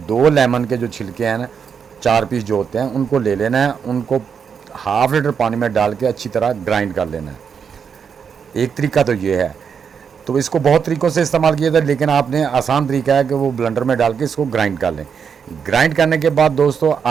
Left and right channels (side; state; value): left; quieter; 6.8 dB